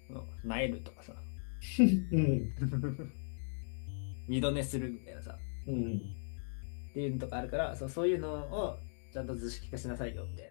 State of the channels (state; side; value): silent; right; digital silence